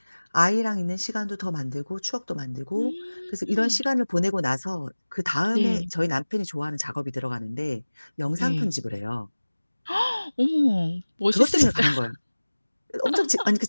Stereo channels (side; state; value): both; inverted; correlation -1.00